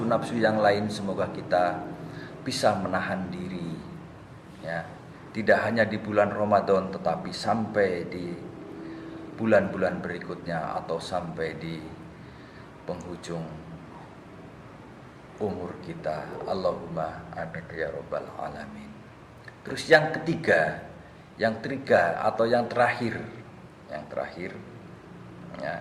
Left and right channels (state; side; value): identical; both; correlation 1.00